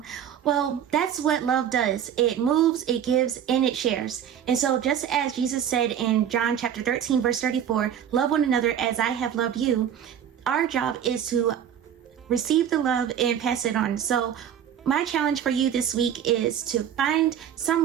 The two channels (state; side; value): quieter; left; 9.2 dB